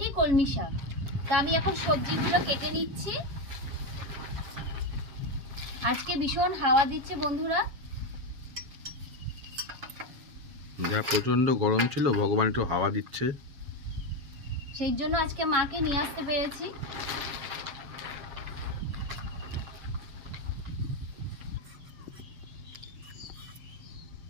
কলমি শাক। তা আমি এখন সবজিগুলো কেটে নিচ্ছি। আজকে ভীষণ হাওয়া দিচ্ছে বন্ধুরা, যা প্রচন্ড গরম ছিল, ভগবান একটু হাওয়া দিচ্ছে, সেই জন্য আজকে মাকে নিয়ে আসতে পেরেছি।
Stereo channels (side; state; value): left; late; 7.2 ms